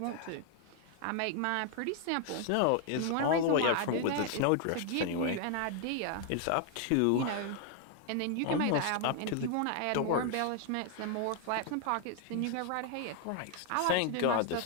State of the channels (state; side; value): different; both; correlation 0.00